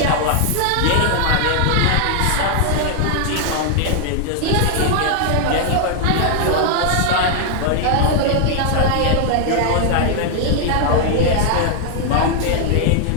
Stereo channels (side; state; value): both; different; correlation 0.00